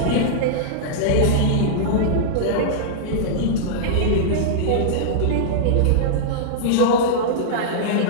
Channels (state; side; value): different; both; correlation -0.02